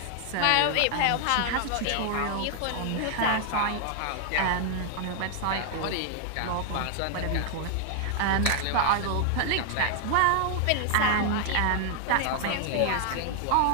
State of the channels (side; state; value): both; different; correlation 0.00